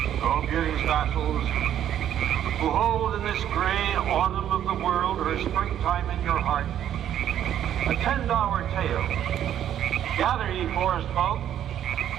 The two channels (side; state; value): left; quieter; 10.6 dB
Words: O beauty's vassals, who hold in this gray autumn of the world her springtime in your heart, attend our tale. Gather, ye forest folk,